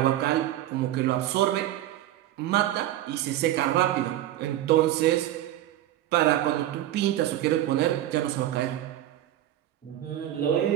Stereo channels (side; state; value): left; quieter; 13.4 dB